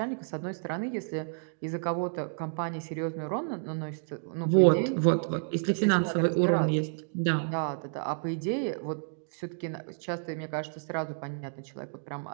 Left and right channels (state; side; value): silent; left; digital silence